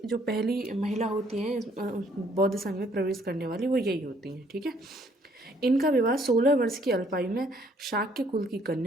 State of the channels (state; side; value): normal; both; correlation 0.64